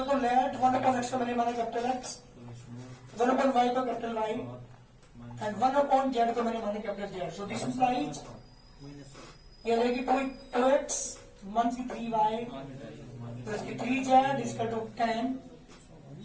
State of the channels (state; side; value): identical; both; correlation 1.00